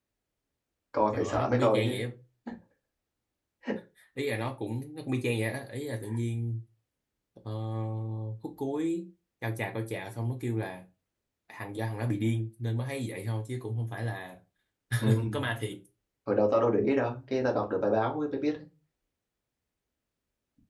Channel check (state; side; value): identical; both; correlation 1.00